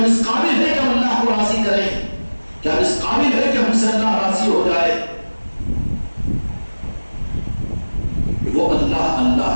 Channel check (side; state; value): both; inverted; correlation -1.00